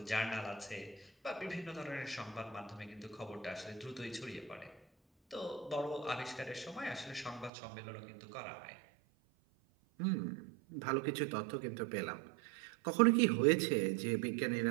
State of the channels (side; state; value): left; drops out; at 7.5 s